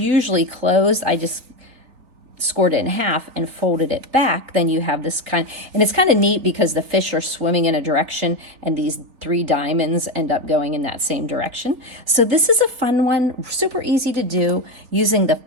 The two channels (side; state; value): left; late; 3.8 ms